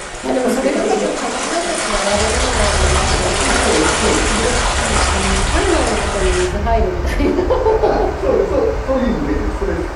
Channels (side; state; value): both; identical; correlation 1.00